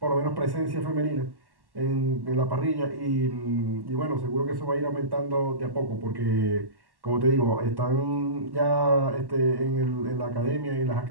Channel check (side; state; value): left; late; 1.1 ms